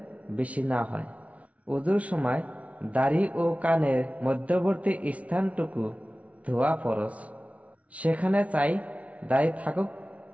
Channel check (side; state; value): left; late; 0.066 ms